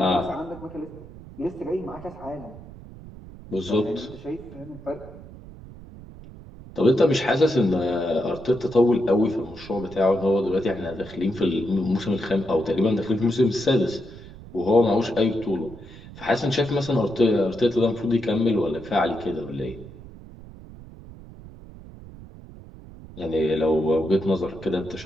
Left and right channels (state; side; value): noise; right; rumble, 17 dB below the sound